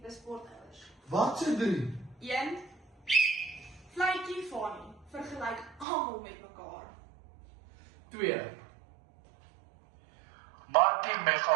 sportouers. Wat se 3? 1. Vletjie Fanny, vergelyk almal met mekaar. 2. Markie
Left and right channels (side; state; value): left; drops out; at 5.9 s